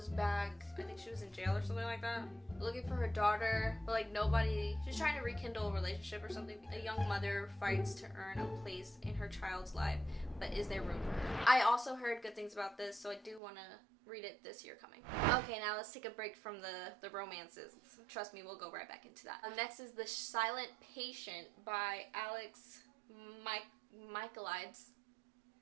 back, I think she was in jail or something like that, looking for her daughter, but like nobody, she's trying to rekindle a relationship or something. A young mother fights to earn a place in her child's life, but is there room for her? I also heard good things about this, so I do want to read it this year coming. Okay, now let's take a break from the romances. Trust me, we'll go right back into that. Next is The Silent Patient by Alex Michaelides.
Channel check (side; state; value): left; drops out; at 13.4 s